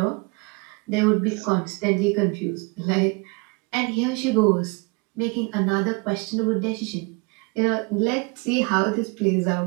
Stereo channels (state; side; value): quieter; left; 30.1 dB